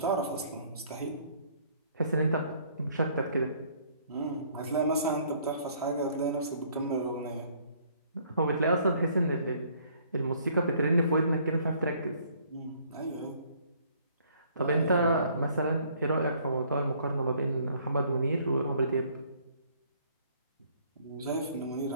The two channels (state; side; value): inverted; both; correlation -0.61